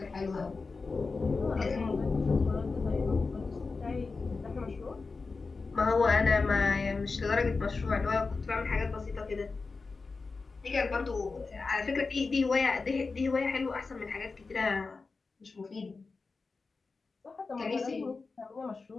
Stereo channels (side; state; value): right; quieter; 4.2 dB